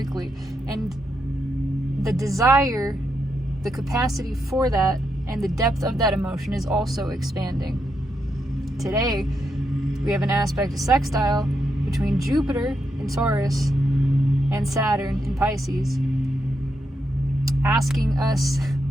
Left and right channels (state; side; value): normal; both; correlation 0.82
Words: And the desire, the capacity for that, and the depth of that emotion is also expanding. Today, we have an aspect of sextile between Jupiter in Taurus and Saturn in Pisces, asking us